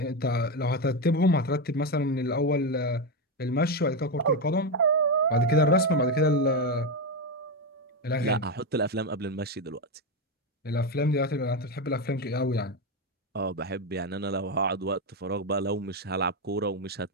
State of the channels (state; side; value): normal; both; correlation 0.10